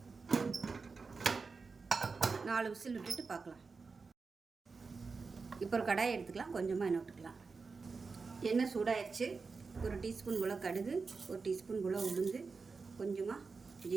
4 விசில் விட்டுட்டு பார்க்கலாம். இப்போ ஒரு கடாயை எடுத்துக்கலாம். கொஞ்சமாக எண்ணெய் விட்டுக்கலாம். எண்ணெய் சூடாயிடுச்சு. 1 டீஸ்பூன் போல் கடுகு, 1 டீஸ்பூன் போல் உளுந்து, கொஞ்சமாக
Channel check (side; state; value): left; quieter; 4.6 dB